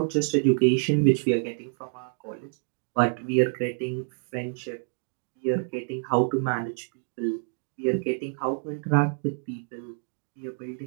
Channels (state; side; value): silent; left; 60 dB below the other